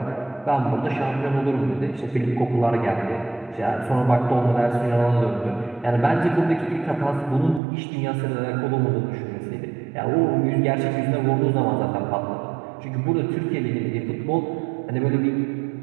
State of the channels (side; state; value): left; drops out; at 7.6 s